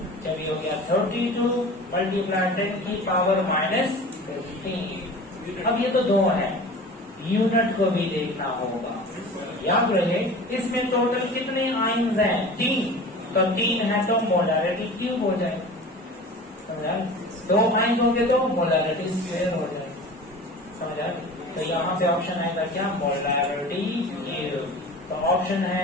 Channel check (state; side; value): normal; both; correlation 0.38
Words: चलिए हो गया 32 मल्टीप्लाई 10 की पावर minus 15. अब ये तो 2 है, यूनिट को भी देखना होगा. याद रहे इसमें टोटल कितने आयन्स हैं? 3. तो 3 है तो मोलारिटी क्यूब हो जाए. समझा? 2 आयन होंगे तो मोलारिटी स्क्वायर हो जाए. समझा? तो यहाँ पे ऑप्शन आएगा क्या? Molarity cube. तो ऑप्शन है